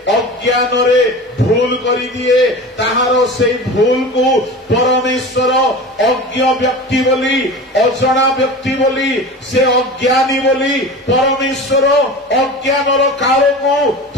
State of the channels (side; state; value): both; normal; correlation 0.33